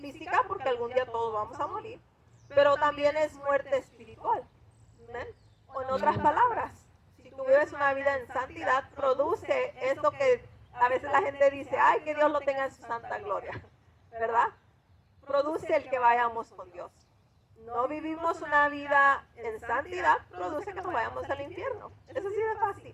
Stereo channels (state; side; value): identical; both; correlation 1.00